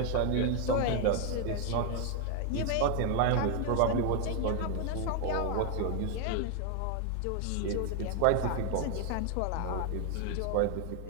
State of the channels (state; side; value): different; both; correlation 0.00